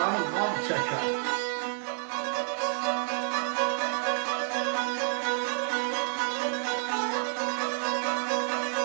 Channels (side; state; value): left; silent; 58 dB below the other